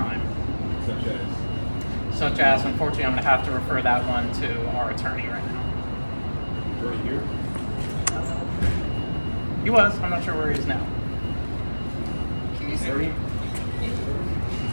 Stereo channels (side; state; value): both; inverted; correlation -1.00